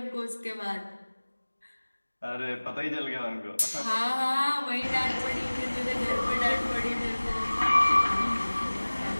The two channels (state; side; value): inverted; both; correlation -1.00